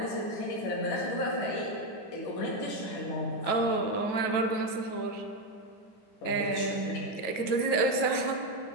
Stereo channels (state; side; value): late; right; 9.2 ms